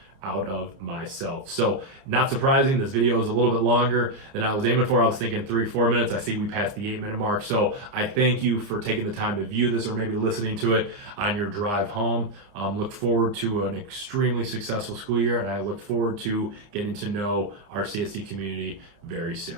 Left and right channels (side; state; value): left; late; 29 ms